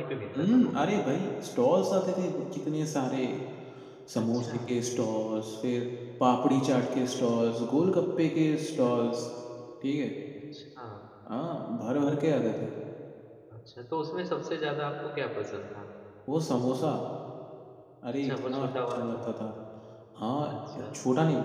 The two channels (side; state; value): both; identical; correlation 1.00